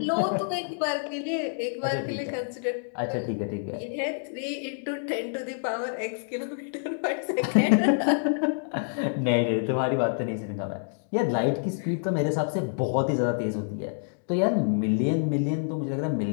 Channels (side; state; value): right; silent; digital silence